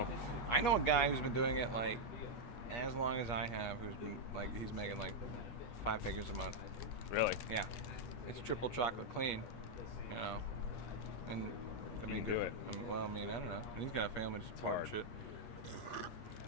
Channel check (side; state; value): right; late; 8.4 ms